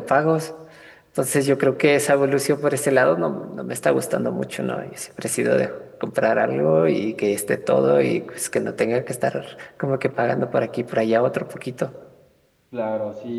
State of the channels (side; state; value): both; identical; correlation 1.00